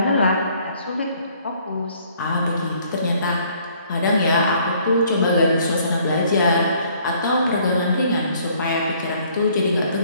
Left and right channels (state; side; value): inverted; both; correlation -0.62